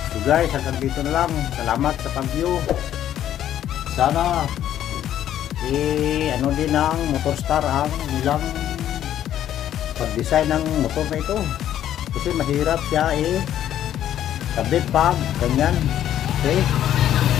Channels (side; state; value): right; quieter; 11.3 dB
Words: So guys, hanggang dito na lang. Salamat sa pag-view. Sana ano din ng Motorstar ang nilang pag-design ng motor na ito. Kasi mahirap siya kabit pa, ganyan. Okay.